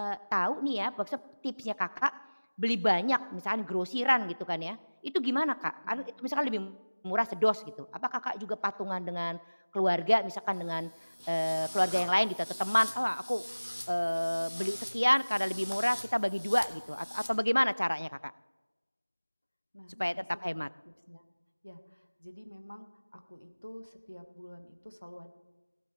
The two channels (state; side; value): inverted; both; correlation -1.00